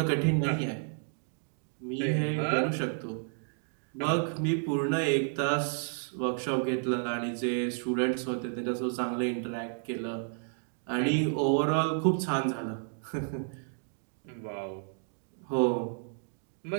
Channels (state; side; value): silent; left; 57 dB below the other